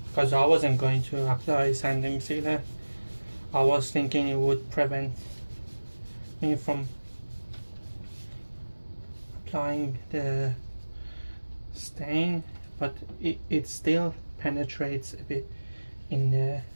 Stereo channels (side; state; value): both; inverted; correlation -1.00